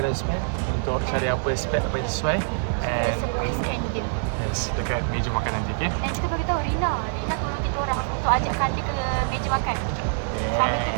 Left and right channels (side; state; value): left; silent; digital silence